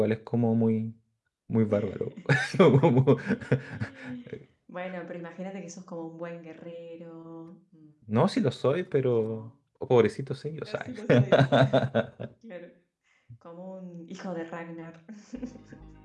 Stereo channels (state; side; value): identical; both; correlation 1.00